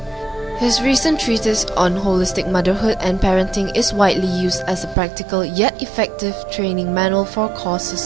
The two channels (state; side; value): drops out; left; at 5.0 s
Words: His recent treatise on holistic motherhood and parenting is widely used as a practical yet effective training manual for